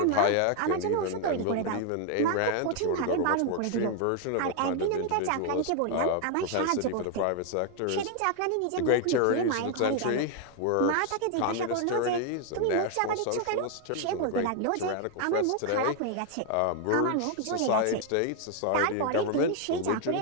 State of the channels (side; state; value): both; different; correlation 0.00